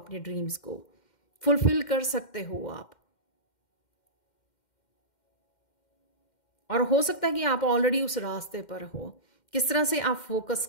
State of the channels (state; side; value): late; right; 2.1 ms